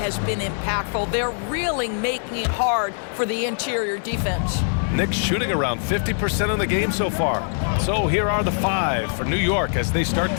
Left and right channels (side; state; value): right; silent; digital silence